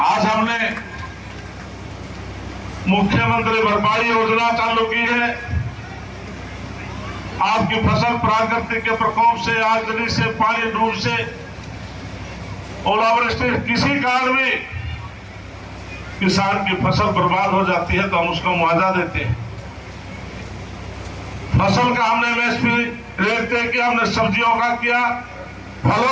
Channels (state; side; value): identical; both; correlation 1.00